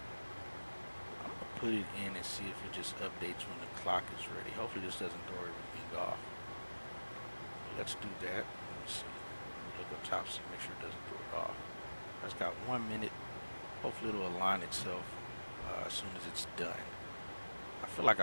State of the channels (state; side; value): inverted; both; correlation -1.00